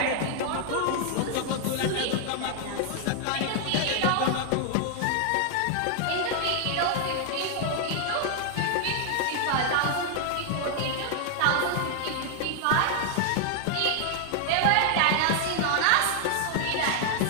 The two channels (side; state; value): both; different; correlation 0.00